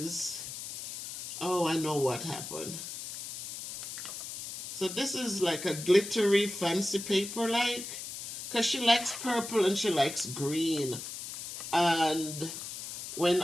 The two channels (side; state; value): left; noise; hiss, 8 dB below the sound